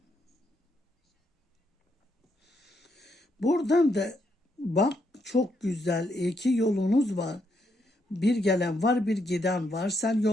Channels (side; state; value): both; normal; correlation 0.77